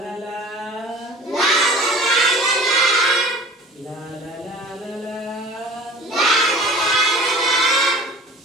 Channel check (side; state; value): both; normal; correlation 0.43